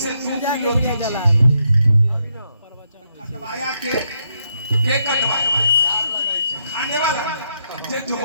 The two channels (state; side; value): inverted; both; correlation -0.79